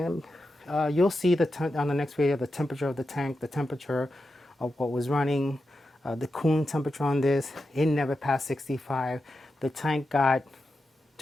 you'll see on the next video the temperature of the tank, the temperature of what was running, the cooling temperature on this. It never passed 65. The tank got,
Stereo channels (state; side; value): normal; both; correlation 0.89